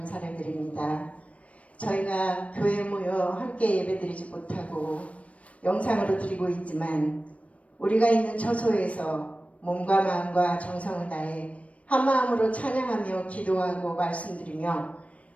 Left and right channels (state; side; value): late; right; 0.065 ms